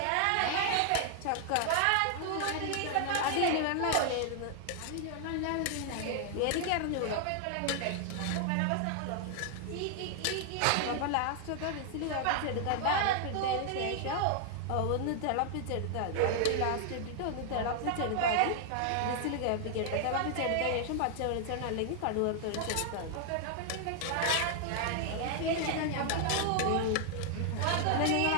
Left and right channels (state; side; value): different; both; correlation 0.00